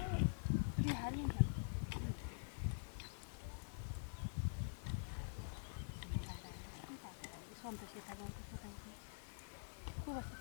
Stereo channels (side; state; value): right; silent; digital silence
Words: हालिन्छ सन्तोष यता गाउँको सोताइको को बस्छ